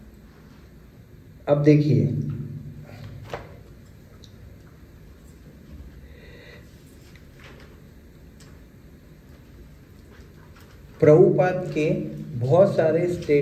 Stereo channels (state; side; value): identical; both; correlation 1.00